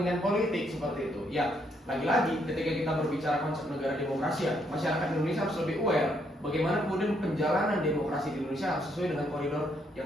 politik seperti itu. Ya lagi-lagi ketika kita berbicara konsep negara demokrasi, ya masyarakat Indonesia harus lebih aware bagaimana kemudian penjalanan demokrasi di Indonesia harus sesuai dengan koridor yang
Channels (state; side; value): normal; both; correlation 0.73